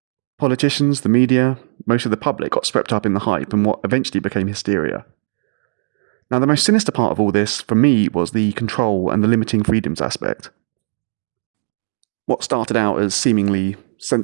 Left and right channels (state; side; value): silent; left; digital silence